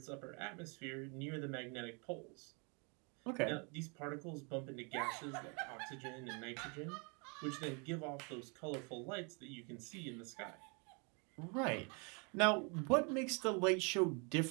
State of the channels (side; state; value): left; quieter; 34.2 dB